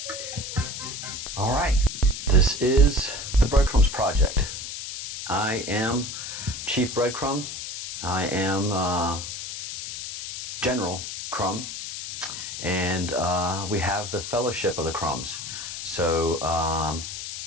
All right. This is the Breadcrumbs Project. I am Chief Breadcrumb. I am General Crumb. And we have the Fellowship of the Crumbs. So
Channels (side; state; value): left; noise; hiss, 7 dB below the sound